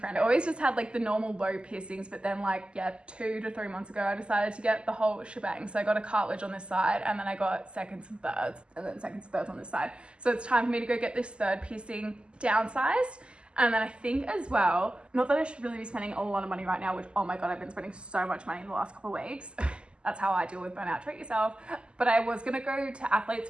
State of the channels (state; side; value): late; left; 0.051 ms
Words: I always just had like the normal low piercings, but then like, yeah, 2 to 3 months ago, I decided to get the whole shebang. So I got a cartilage on this side, and then I got seconds and thirds, and then seconds and thirds on this side. So it's time for me to go get this 3rd piercing downsized. And then I think as well, not that I should really be spending a lot of money right now, which, oh my God, I've been spending so much money in the last couple of weeks. That's how I deal with burnout, treat yourself. But I was gonna go to Athlete's